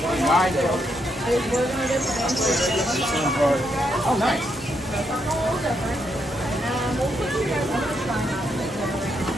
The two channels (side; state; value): both; normal; correlation 0.78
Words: going to do is we're going to get the Oh, nice. That's a little different. And we'll put you guys on the try not to make it rain.